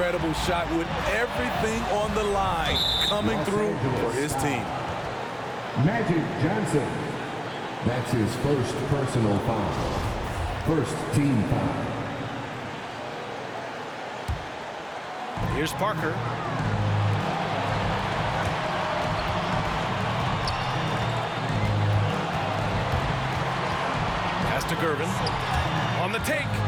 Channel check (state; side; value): identical; both; correlation 1.00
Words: shot with everything on the line coming through for his team. Magic Johnson. That's his first personal foul. First team foul. Here's Parker. Pass to Gervin. On the take.